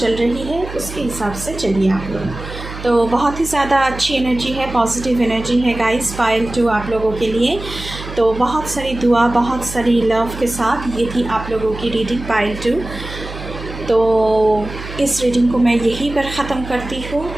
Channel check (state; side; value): noise; right; hum, 11 dB below the sound